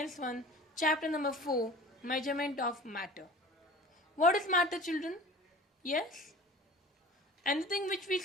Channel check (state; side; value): normal; both; correlation 0.41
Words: 1 chapter number 4 measurement of matter. What is matter children? Yes? Anything which we